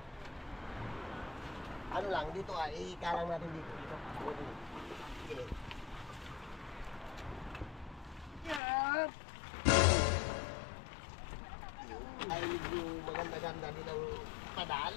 Ano lang, dito ikalang natin dito. Okay. Yan! Ay, medyo maganda-ganda din ang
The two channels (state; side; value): drops out; right; at 8.6 s